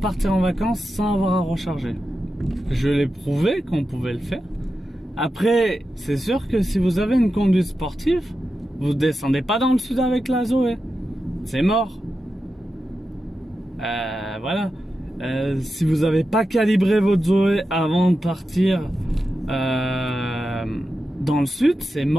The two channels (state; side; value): normal; both; correlation 0.90